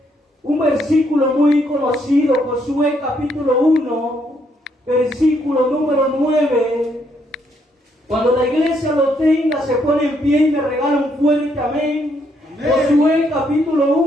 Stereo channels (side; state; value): both; normal; correlation 0.73